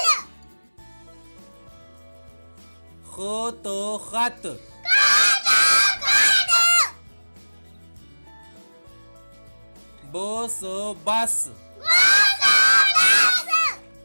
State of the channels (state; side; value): inverted; both; correlation -1.00